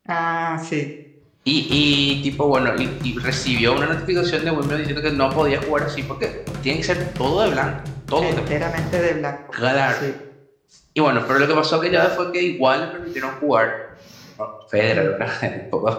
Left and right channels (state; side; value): identical; both; correlation 1.00